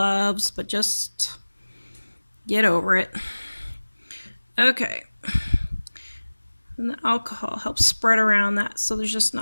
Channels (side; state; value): both; inverted; correlation -1.00